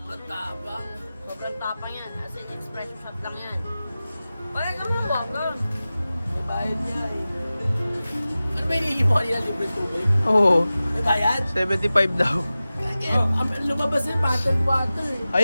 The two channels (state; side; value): inverted; both; correlation -0.96